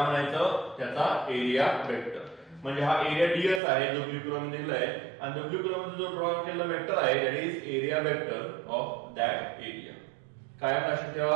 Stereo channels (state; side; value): drops out; left; at 3.6 s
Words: म्हणायचं त्याचा एरिया वेक्टर. म्हणजे हा एरिया ds आहे जो ब्लू कलर मध्ये दिलाय, आणि ब्लू कलर मध्ये जो ड्रॉ केलेला वेक्टर आहे that is area vector of that area. काय लक्षात